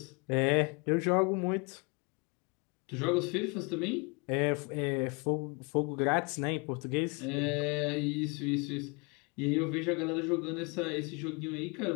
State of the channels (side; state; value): right; quieter; 31.1 dB